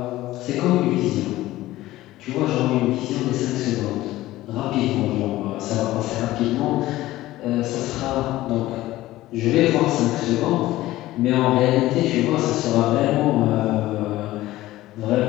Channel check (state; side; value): quieter; right; 16.4 dB